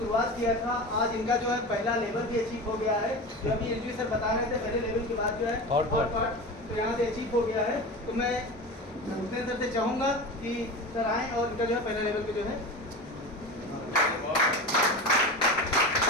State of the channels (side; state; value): both; normal; correlation 0.28